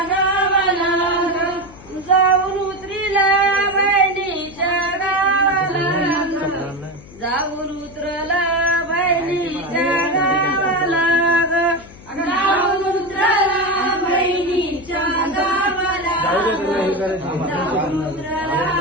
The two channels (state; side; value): noise; left; hum, 20 dB below the sound